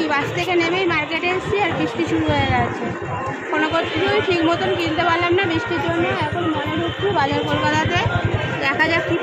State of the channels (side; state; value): both; identical; correlation 1.00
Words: বাস থেকে নেমেই মার্কেটে এসেছি আর বৃষ্টি শুরু হয়ে গেছে। কোনো কিছুই ঠিক মতন কিনতে পারলাম না বৃষ্টির জন্য। এখন মনে ঢুকছি বাজার কলকাতাতে, দেখা যাক কী